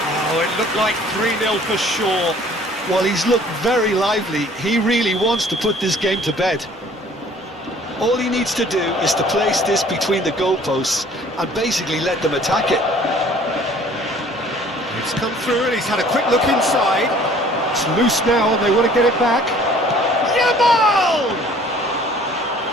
Oh, it looked like 3-0 for sure. Well, he's looked very lively. He really wants to put this game to bed. All he needs to do is to place this between the goalposts and basically let them attack it. It's come through and he's had a quick look inside. It's loose now and they want to get it back. Yamal!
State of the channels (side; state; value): both; normal; correlation 0.54